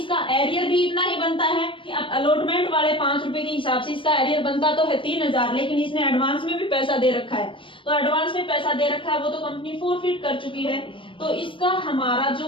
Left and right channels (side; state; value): right; late; 0.25 ms